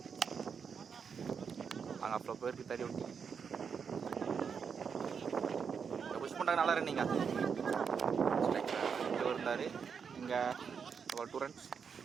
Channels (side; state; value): left; quieter; 6.4 dB